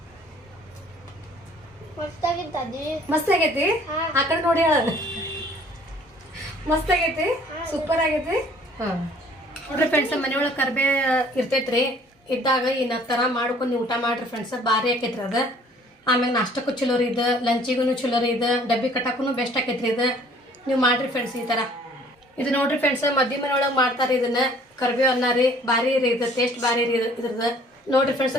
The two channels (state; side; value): normal; both; correlation 0.55